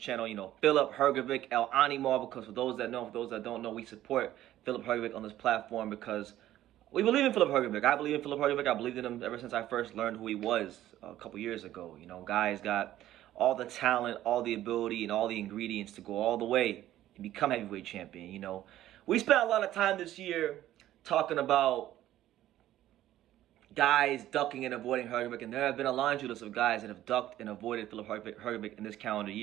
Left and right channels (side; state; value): left; quieter; 13.5 dB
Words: Filip Hrgovic Ronnie, because for those that know, for those that don't know, we support Filip Hrgovic on this platform because we believe in Filip Hrgovic. I believe in Filip Hrgovic. I believed in him ever since I first learned who he was a couple years ago. Guy's got all the talent, all the ability, and all the ingredients to go all the way and become heavyweight champion. We spent a lot of time this year talking about guys ducking and avoiding Hrgovic, and there have been a laundry list of guys that have ducked and avoided Filip Hrgovic in this calendar